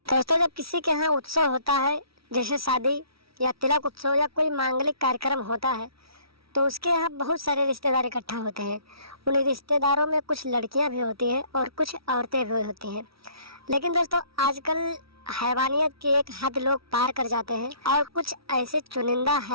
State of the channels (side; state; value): left; late; 0.75 ms